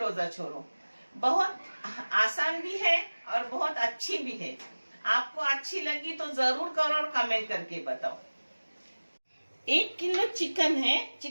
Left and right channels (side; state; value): both; inverted; correlation -1.00